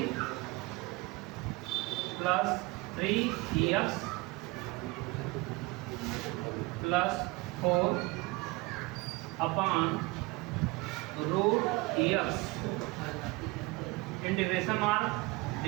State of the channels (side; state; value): left; quieter; 24.0 dB